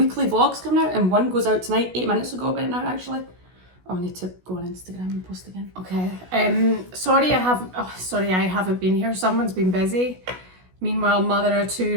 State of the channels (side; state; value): left; late; 16 ms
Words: vlogs coming out, and one goes out tonight, 8 minutes ago about now actually. Oh, I need to go on Instagram and post again. Okay. Sorry I haven't been here. Someone's been busy. Meanwhile, mother of 2